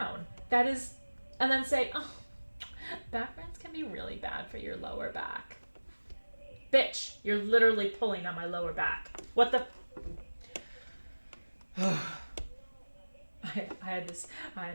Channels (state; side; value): inverted; both; correlation -1.00